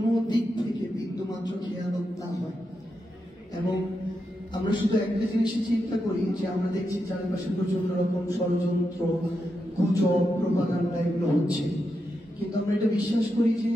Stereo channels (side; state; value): both; normal; correlation 0.86